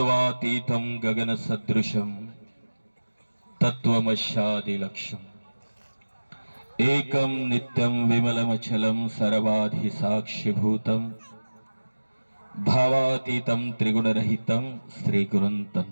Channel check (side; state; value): both; inverted; correlation -1.00